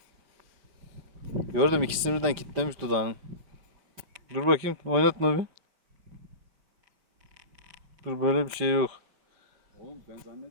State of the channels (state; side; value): late; left; 4.9 ms